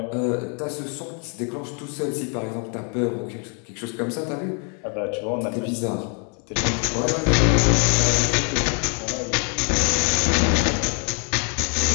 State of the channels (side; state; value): right; quieter; 39.2 dB